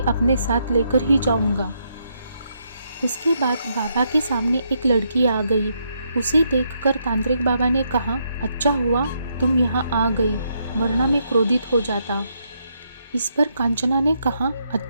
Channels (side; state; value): both; inverted; correlation -0.77